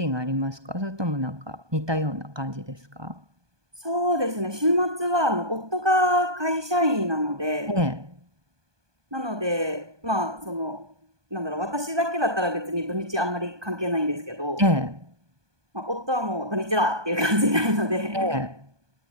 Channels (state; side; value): late; left; 1.2 ms